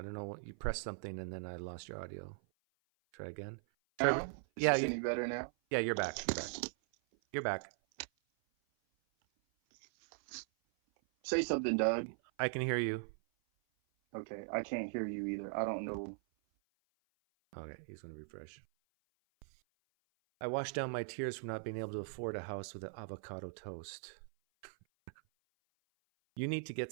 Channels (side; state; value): left; silent; 51 dB below the other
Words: don't know what you pressed something and then I lost your audio. Try again. Now? Is this any better now? Yeah, you're back. You're back. Say something, Doug. I can hear you. Okay, I can't hear you either. I don't know. Okay, he's going to refresh. I washed down my tears from not being able to afford a house with an avocado toast. You need to get